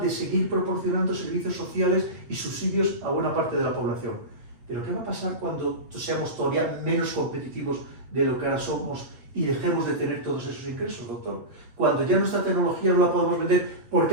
de seguir proporcionando servicios sociales y subsidios a buena parte de la población. Pero ¿qué va a pasar cuando seamos todavía menos competitivos de lo que ahora somos y dejemos de tener todos esos ingresos, doctor? Cuando ya nuestra tecnología no la podemos vender porque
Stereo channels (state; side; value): late; left; 8.3 ms